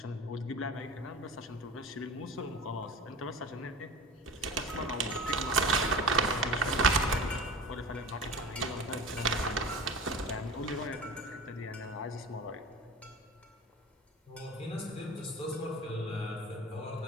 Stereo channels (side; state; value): both; normal; correlation 0.34